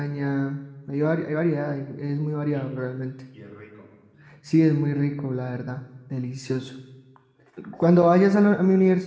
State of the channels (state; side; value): identical; both; correlation 1.00